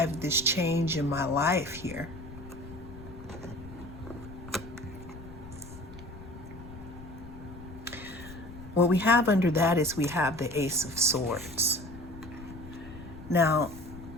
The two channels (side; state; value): left; noise; rumble, 14 dB below the sound